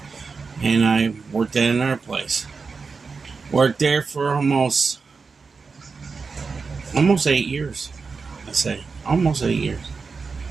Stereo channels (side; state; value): left; quieter; 4.8 dB